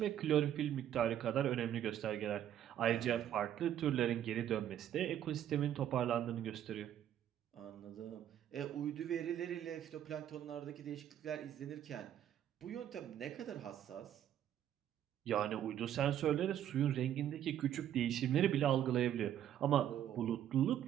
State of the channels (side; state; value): left; quieter; 10.8 dB